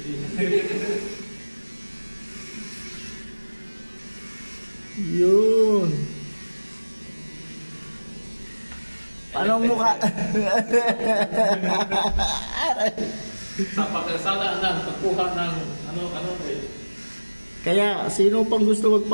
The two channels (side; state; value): both; inverted; correlation -1.00